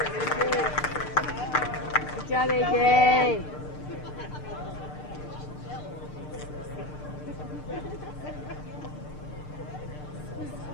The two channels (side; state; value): right; late; 6.7 ms